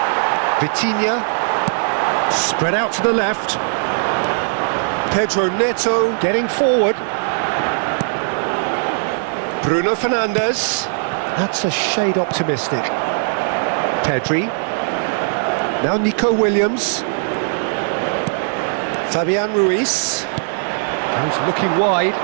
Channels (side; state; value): left; silent; digital silence